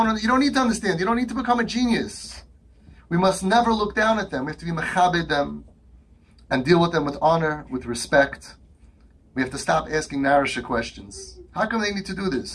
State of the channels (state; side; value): identical; both; correlation 1.00